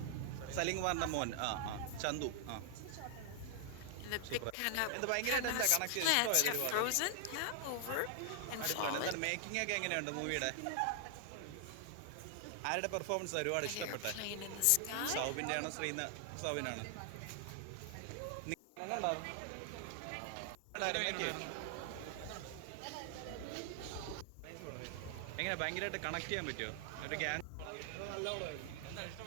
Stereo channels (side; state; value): both; different; correlation 0.00